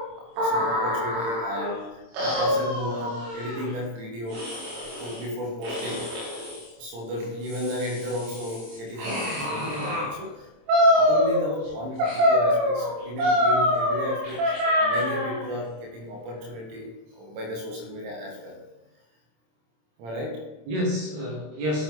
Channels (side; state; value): left; late; 26 ms